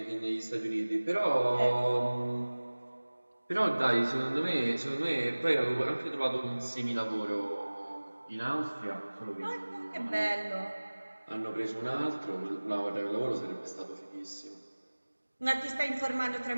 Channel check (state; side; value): inverted; both; correlation -1.00